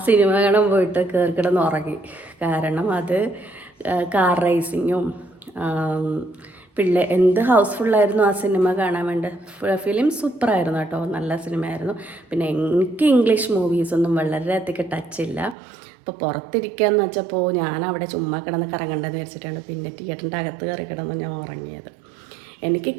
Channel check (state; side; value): drops out; left; at 15.6 s